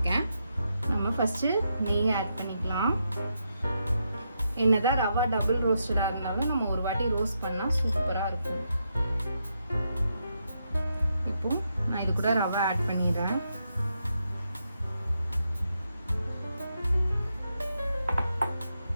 நம்ம ஃபஸ்ட்டு நெய் ஆட் பண்ணிக்கலாம். என்னதான் ரவா டபுள் ரோஸ்டடாக இருந்தாலும் நம்ம ஒரு வாட்டி ரோஸ்ட் பண்ணால் சூப்பராக இருக்கும். இப்போ நான் இது கூட ரவா ஆட் பண்ணிடுறேன்.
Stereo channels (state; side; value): inverted; both; correlation -0.82